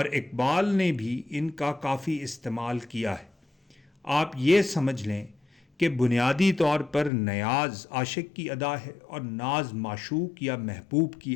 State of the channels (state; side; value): drops out; right; at 7.1 s